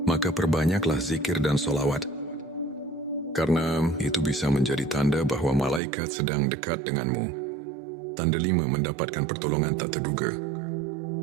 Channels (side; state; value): left; drops out; at 5.8 s